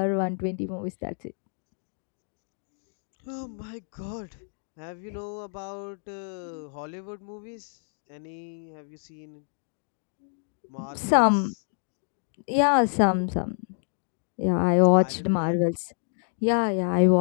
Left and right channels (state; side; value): silent; right; digital silence